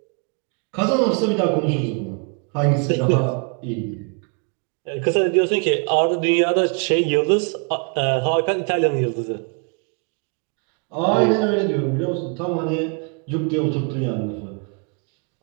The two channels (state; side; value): quieter; left; 38.4 dB